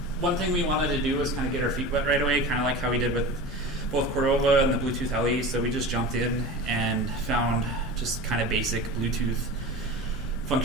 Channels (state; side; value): normal; both; correlation 0.32